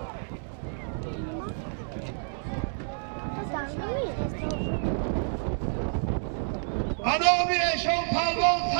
Anami eşon palvon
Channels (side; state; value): left; silent; digital silence